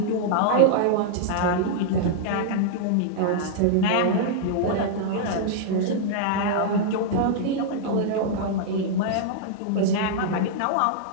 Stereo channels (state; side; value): different; both; correlation -0.01